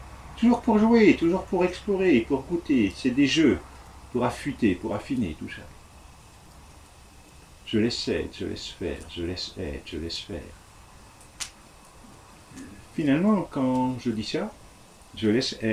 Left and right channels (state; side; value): identical; both; correlation 1.00